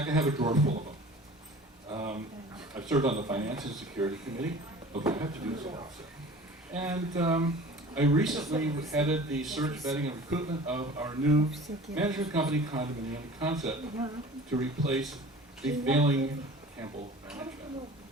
I have a drawer full of them. I've served on the Finance and Security Committee. Okay, I have to do this also. And I recently headed the search, vetting, and recruitment of our new management company, Condominium Concept, to replace the failing Campbell Management.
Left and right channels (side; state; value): both; normal; correlation 0.43